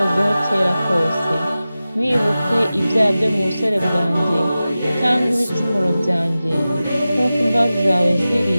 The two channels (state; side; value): inverted; both; correlation -0.95